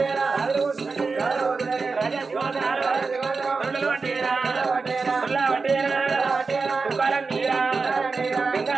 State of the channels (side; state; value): left; quieter; 4.4 dB